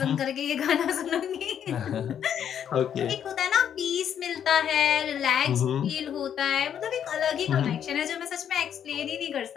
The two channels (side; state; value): right; quieter; 9.0 dB